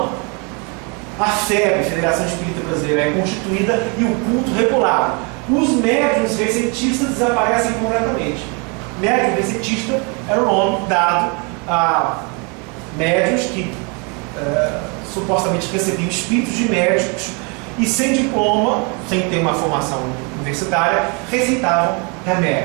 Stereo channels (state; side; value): quieter; left; 33.3 dB